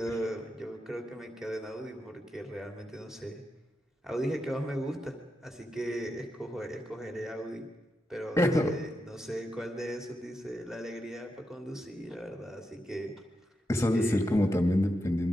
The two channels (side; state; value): both; normal; correlation 0.86